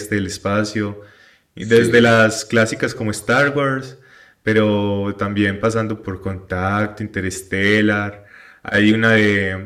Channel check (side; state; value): both; identical; correlation 1.00